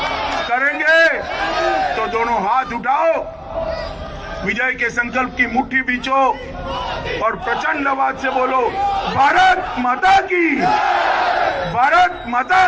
करेंगे? तो दोनों हाथ उठाओ, विजय के संकल्प की मुट्ठी बीचो और प्रचंड आवाज से बोलो, भारत माता की, भारत माता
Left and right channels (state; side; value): identical; both; correlation 1.00